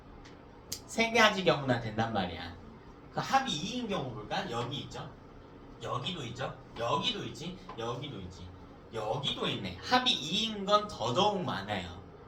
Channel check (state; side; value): identical; both; correlation 1.00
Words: 세 가지 경우나 된단 말이야. 그 합이 2인 경우 볼까? 여기 있죠? 여기도 있죠? 여기도 있지? 여기도 있지? 여기도 있네. 합이 2인 건 더더욱 많아요.